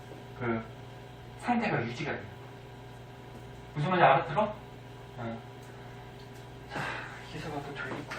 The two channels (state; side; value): identical; both; correlation 1.00